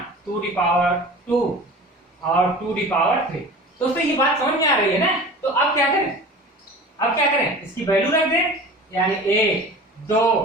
2 the power 2 और 2 दी पावर 3। दोस्तों ये बात समझ में आ रही है ना। तो अब क्या करें, अब क्या करें, इसकी वैल्यू रख दें, यानी 1 2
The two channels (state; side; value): normal; both; correlation 0.38